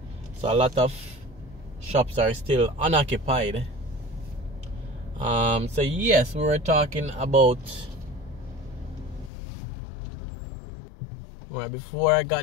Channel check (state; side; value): drops out; right; at 9.3 s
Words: So a lot of shops are still unoccupied. So yes, we were talking about, well, before I